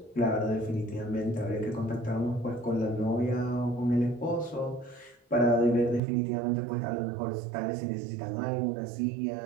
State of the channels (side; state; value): left; drops out; at 6.0 s